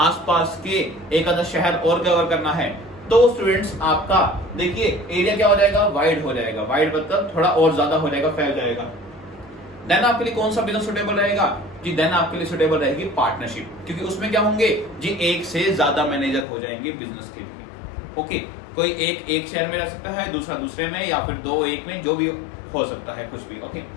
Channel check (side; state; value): right; drops out; at 16.4 s